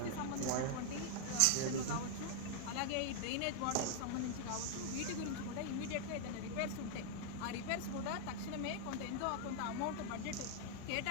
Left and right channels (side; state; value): both; different; correlation 0.00